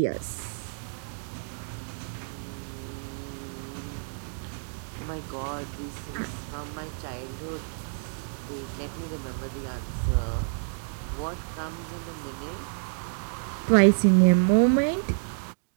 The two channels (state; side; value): silent; left; digital silence